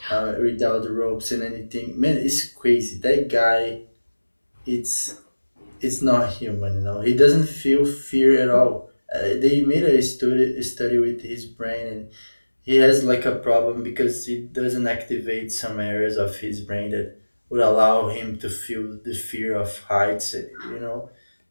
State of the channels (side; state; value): both; inverted; correlation -1.00